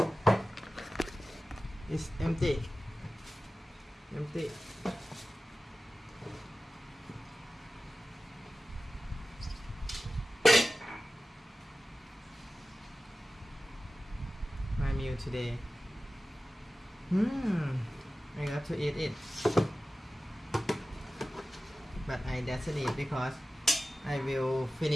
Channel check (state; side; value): normal; both; correlation 0.95